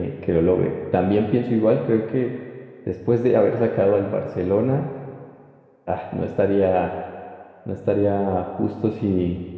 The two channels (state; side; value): identical; both; correlation 1.00